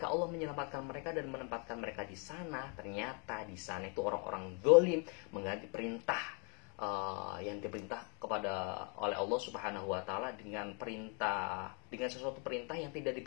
Allah menyelamatkan mereka dan menempatkan mereka di sana, ternyata di sana itu orang-orang zalim mengganti perintah yang diperintah oleh Allah Subhanahu wa taala dengan sesuatu perintah yang tidak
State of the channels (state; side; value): quieter; right; 36.4 dB